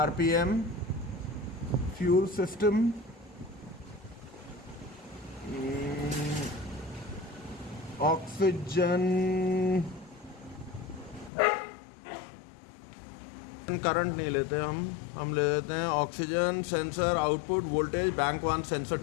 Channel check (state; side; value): drops out; right; at 11.3 s